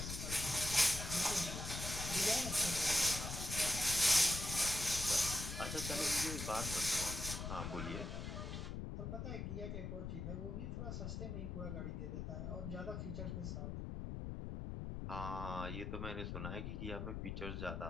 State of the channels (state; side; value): noise; left; rumble, 4 dB below the sound